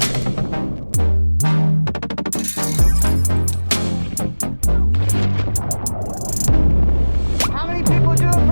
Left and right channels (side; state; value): both; inverted; correlation -1.00